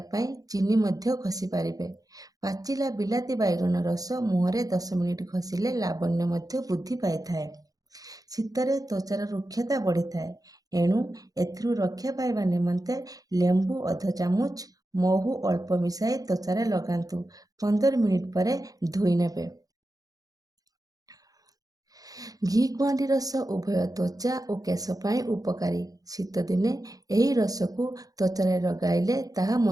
पाई चीनी मध्य खसी पारिबे। पाचिला बिलाती बैगन रस मुहरे 10 मिनिट खसिले लावण्य मध्य वृद्धि पाई थाए। शीतरे त्वचार रुक्षता बढ़ी थाए। एणु एथिरु रक्षा पाइबा निमंते लेंबू अध चामच महू अल्प मिसाई त्वचारे लगांतु। 15 मिनिट परे धोई नेबे। घी कुआंडी रस उभय त्वचा और केश पाई उपकारी। शीत दिने यही रस को त्वचारे लगाइले ताहा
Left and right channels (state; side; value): late; left; 0.18 ms